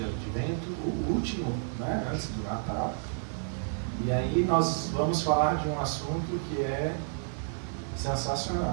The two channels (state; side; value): silent; left; digital silence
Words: advento, o último, né, antes do Natal. E aí nós vamos falar de um assunto que é